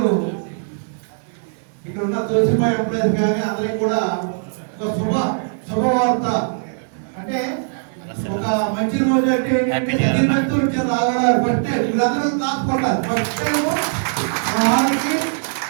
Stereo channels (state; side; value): silent; left; digital silence